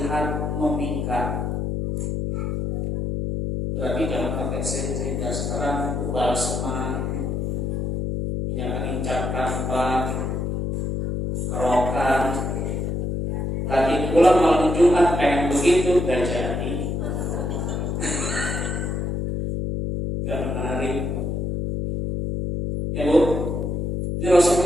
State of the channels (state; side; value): noise; left; hum, 1 dB below the sound